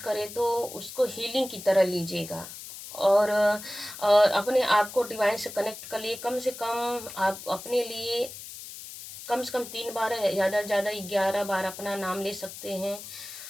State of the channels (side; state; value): left; noise; hiss, 12 dB below the sound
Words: तो उसको हीलिंग की तरह लीजिएगा। और अपने आप को डिवाइन से कनेक्ट कर लिए। कम से कम आप अपने लिए कम से कम 3 बार, ज़्यादा से ज़्यादा 11 बार अपना नाम ले सकते हैं।